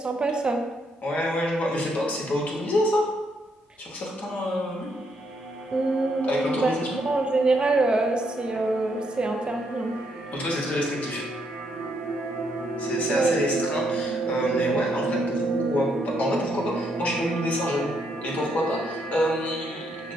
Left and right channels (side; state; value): both; normal; correlation 0.75